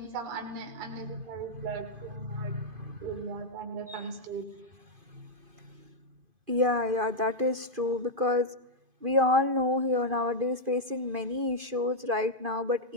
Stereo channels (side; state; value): left; late; 2.5 ms